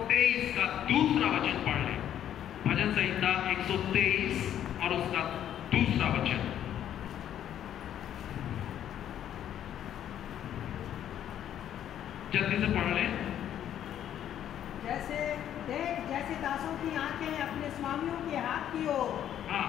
का दूसरा वचन पढ़ लें। भजन संहिता 123 और उसका दूसरा वचन। जल्दी से पढ़ लें। जैसे दासों की आंखें अपने स्वामियों के हाथ की ओर, हाँ,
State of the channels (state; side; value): quieter; right; 10.5 dB